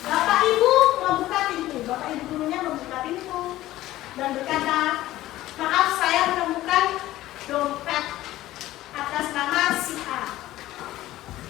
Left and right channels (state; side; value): quieter; right; 15.5 dB